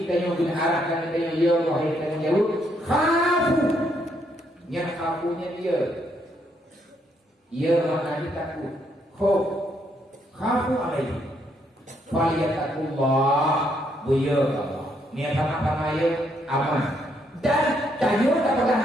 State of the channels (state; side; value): normal; both; correlation 0.73